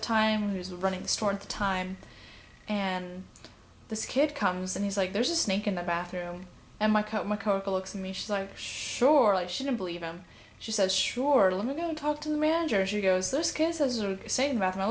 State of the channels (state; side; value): identical; both; correlation 1.00